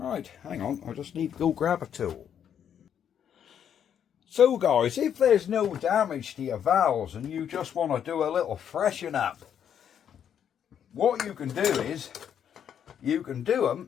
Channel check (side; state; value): right; quieter; 8.8 dB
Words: hang on, I just need to go grab a tool. So guys, if there's no damage to your valves and you just want to do a little freshen up, what you can do is, you can do